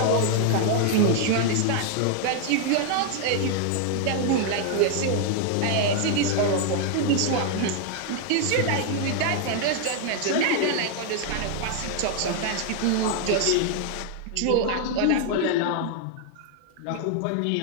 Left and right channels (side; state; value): both; different; correlation 0.00